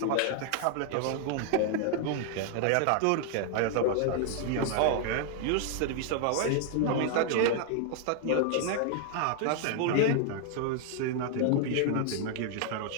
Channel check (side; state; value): both; different; correlation 0.00